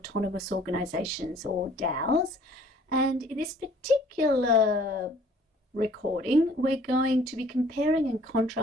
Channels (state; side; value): normal; both; correlation 0.55